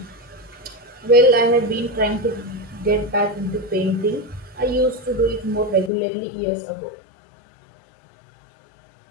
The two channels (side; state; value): right; drops out; at 5.9 s